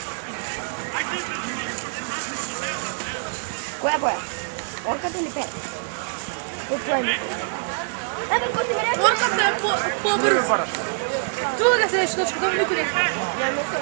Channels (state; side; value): silent; left; 62 dB below the other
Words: Чува да се нещо, да ми никъде.